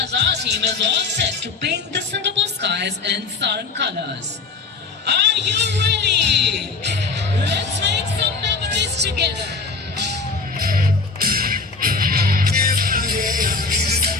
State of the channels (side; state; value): right; quieter; 4.3 dB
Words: our team is all set to paint the Singapore skies in Sarang colors. Are you ready? Let's make some memories together.